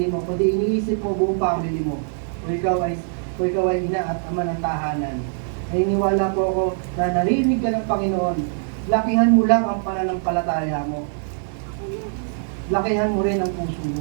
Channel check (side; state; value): left; silent; digital silence